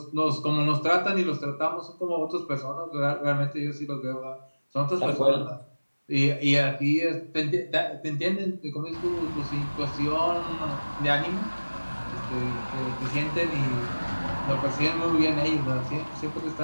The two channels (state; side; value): inverted; both; correlation -1.00